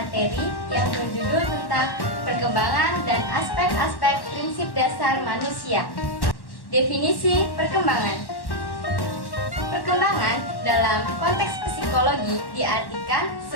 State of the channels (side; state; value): right; late; 1.1 ms